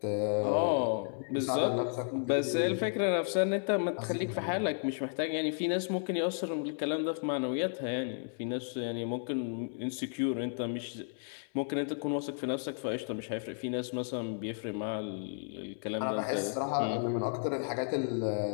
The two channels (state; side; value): silent; right; digital silence